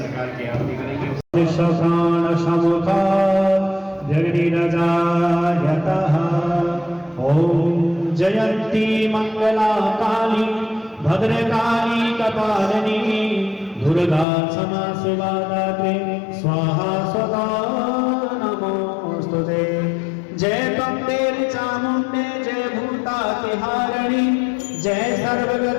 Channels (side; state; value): right; drops out; at 14.2 s